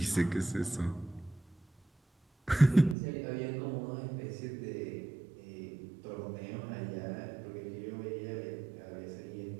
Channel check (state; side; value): drops out; left; at 3.0 s